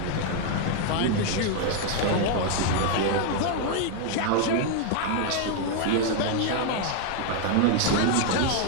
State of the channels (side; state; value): both; different; correlation 0.00